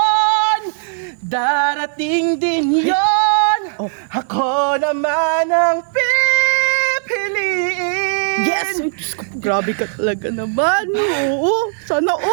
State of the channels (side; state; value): left; silent; digital silence